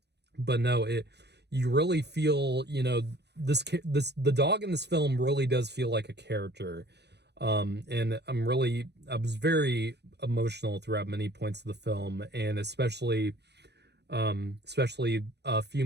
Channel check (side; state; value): left; late; 0.49 ms